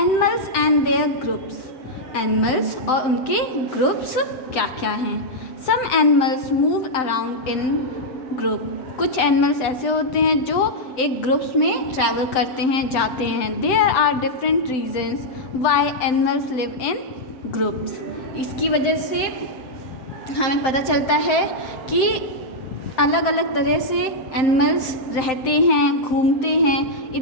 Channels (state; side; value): late; right; 7.8 ms